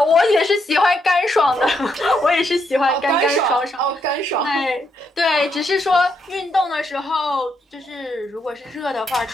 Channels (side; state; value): both; normal; correlation 0.78